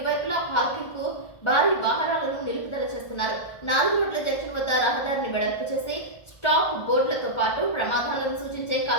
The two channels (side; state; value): right; late; 1.3 ms